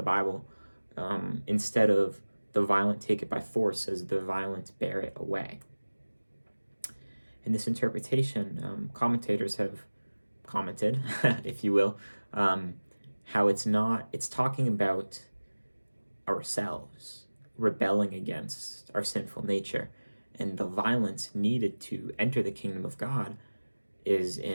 Bible. Instead of the violent take it by force, says the violent bear it away. In this interpretation, commentators have commented, if you will, how it's talking about ourselves rebelling against our sinful nature, and the violence needed to enter the kingdom of God is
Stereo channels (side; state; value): both; inverted; correlation -1.00